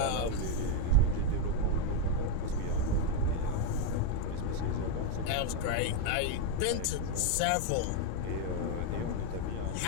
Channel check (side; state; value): both; different; correlation 0.02